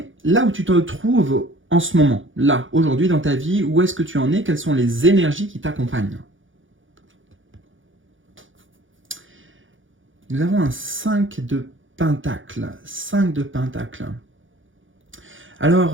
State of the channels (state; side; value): late; left; 0.57 ms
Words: là où tu te trouves en ce moment, là, aujourd'hui dans ta vie, où est-ce que tu en es, quelles sont les énergies qui t'accompagnent. Nous avons un 5 de pentacles. 5 de pentacles.